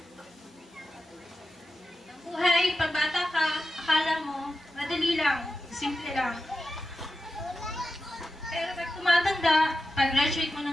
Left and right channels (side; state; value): both; normal; correlation 0.92